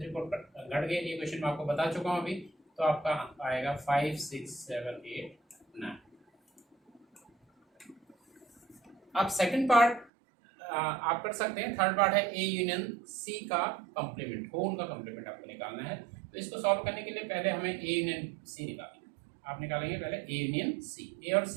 3 4 घट गए। ये क्वेश्चन मैं आपको बता चुका हूँ अभी। तो आपका आएगा 5 6 7 8 9। अब सेकंड पार्ट आप कर सकते हैं। थर्ड पार्ट है ए यूनियन सी का कंप्लीमेंट, होल का कंप्लीमेंट आपको निकालना है। तो इसको सॉल्व करने के लिए पहले हमें ए यूनियन सी निकालेंगे। आप निकालेंगे पहले ए यूनियन सी, ए और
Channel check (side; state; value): left; drops out; at 10.1 s